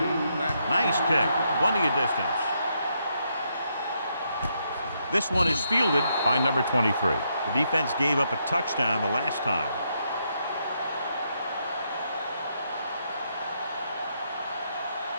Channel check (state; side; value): inverted; both; correlation -0.78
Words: back. Nice kick. Plenty of distance. This one is fielded by number 23. The defense gave up a touchdown the last time.